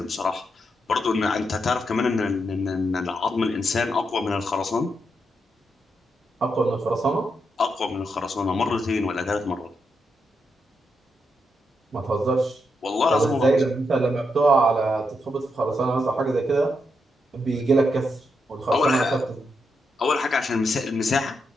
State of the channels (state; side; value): normal; both; correlation 0.82